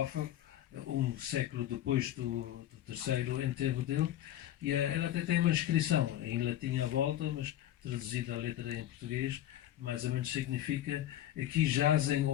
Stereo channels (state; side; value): quieter; right; 12.4 dB